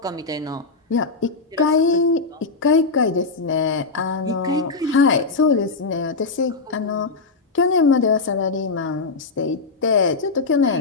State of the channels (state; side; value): quieter; right; 4.0 dB